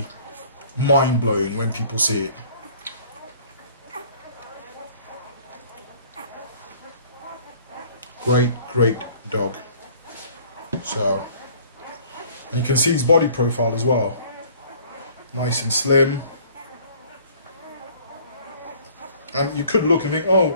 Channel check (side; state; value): both; inverted; correlation -0.53